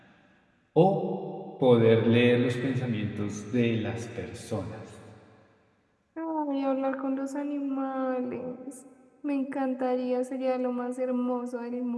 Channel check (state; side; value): identical; both; correlation 1.00